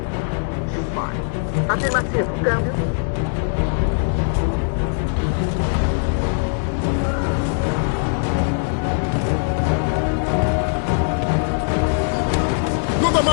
dispare. Afirmativo. Câmbio. Não dá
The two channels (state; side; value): silent; right; digital silence